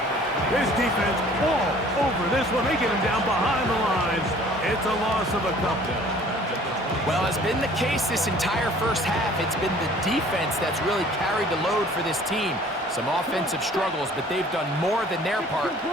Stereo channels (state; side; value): normal; both; correlation 0.52